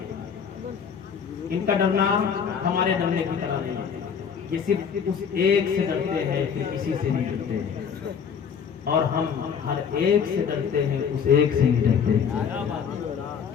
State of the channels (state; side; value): quieter; right; 7.0 dB